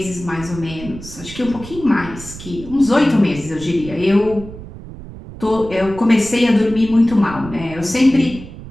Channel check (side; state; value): right; noise; rumble, 14 dB below the sound